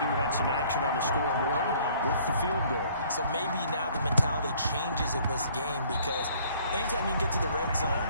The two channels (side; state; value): both; inverted; correlation -0.58